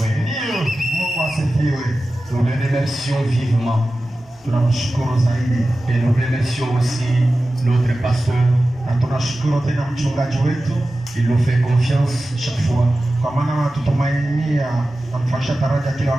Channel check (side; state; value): both; normal; correlation 0.95